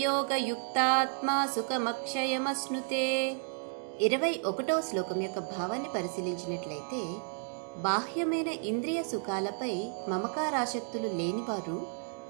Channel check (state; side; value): silent; left; 56 dB below the other